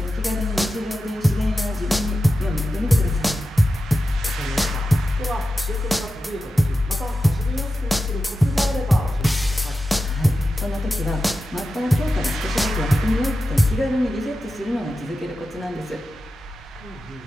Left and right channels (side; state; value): both; normal; correlation 0.92